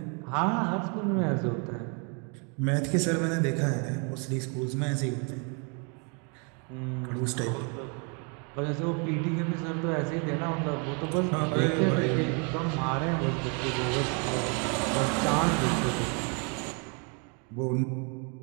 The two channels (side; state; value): left; quieter; 35.8 dB